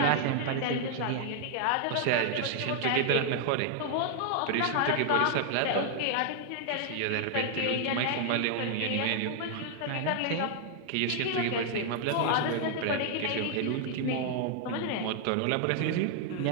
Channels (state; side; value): different; both; correlation 0.00